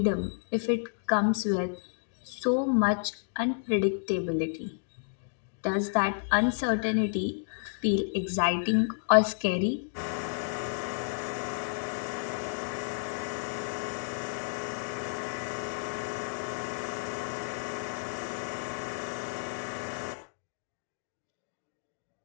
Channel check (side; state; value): right; silent; digital silence